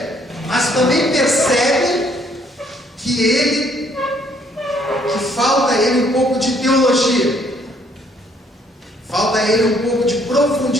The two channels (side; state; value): both; normal; correlation 0.65